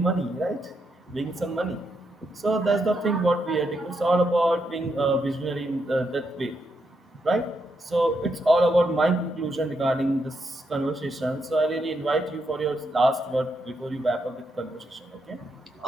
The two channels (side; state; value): both; normal; correlation 0.80